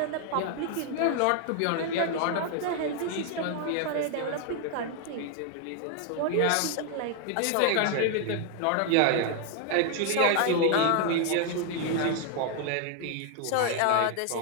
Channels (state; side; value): different; both; correlation 0.00